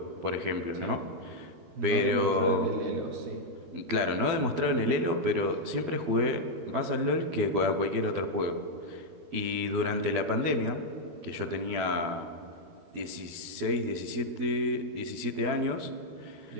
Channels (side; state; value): left; late; 12 ms